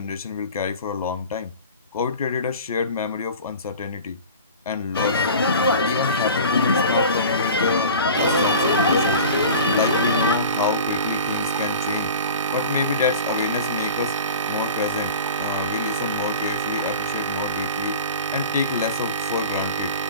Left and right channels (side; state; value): both; inverted; correlation -0.38